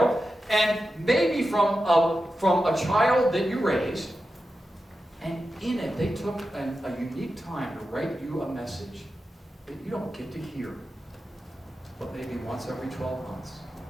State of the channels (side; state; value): both; normal; correlation 0.91